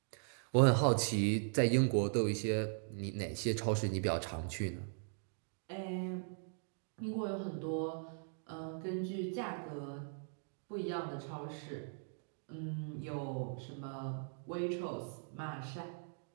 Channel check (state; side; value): silent; left; digital silence